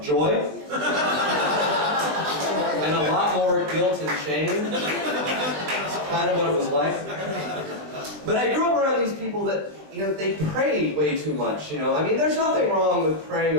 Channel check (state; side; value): late; left; 20 ms